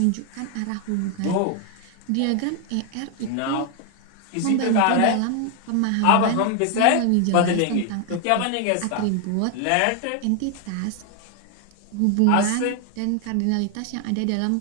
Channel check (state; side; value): different; both; correlation 0.00